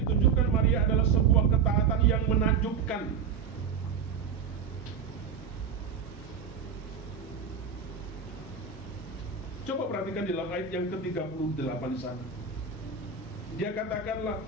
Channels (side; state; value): left; quieter; 6.3 dB